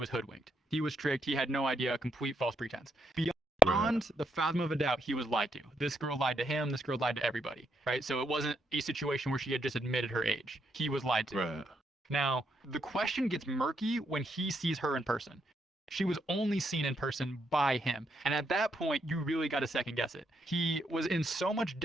hoodwinked. He was tricked. He had no idea. Complete false pretense. Right. Beyond the fathom of a doubt, he was lied to. This girl lied to him. This girl lied to everybody, right? So it wasn't a situation where she had just admitted her age. He was lied to. Right. Now, the question gets murky when he sees her in person. She was only seen in person by him. And at that point, you really got to second guess it. He was in so much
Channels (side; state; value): both; normal; correlation 0.79